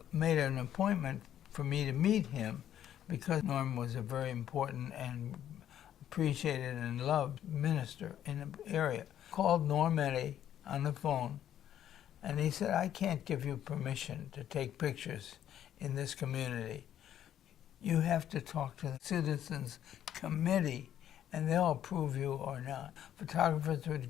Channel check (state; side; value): quieter; right; 10.8 dB